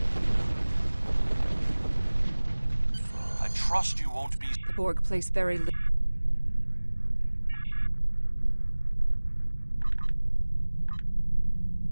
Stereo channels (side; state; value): both; inverted; correlation -1.00